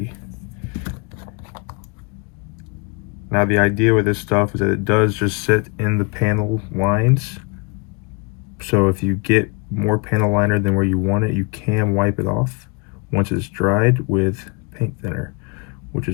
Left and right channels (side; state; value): right; quieter; 30.8 dB